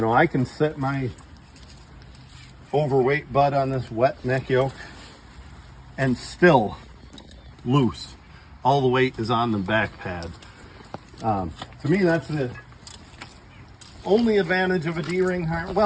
know, I can set my overweight butt on this wet neck yoke and still loose. All the weight is on the back pad. To me, that's the only advantage of a D-ring harness.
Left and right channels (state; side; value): identical; both; correlation 1.00